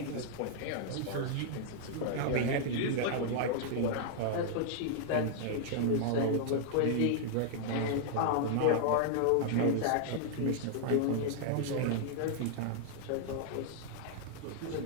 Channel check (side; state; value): both; different; correlation -0.01